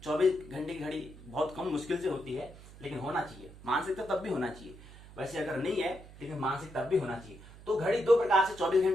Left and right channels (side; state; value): right; noise; hum, 18 dB below the sound